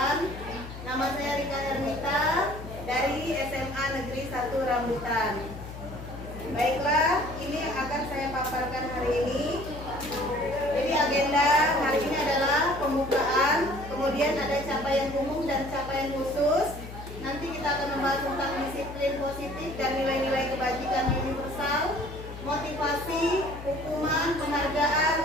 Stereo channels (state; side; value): noise; left; hum, 12 dB below the sound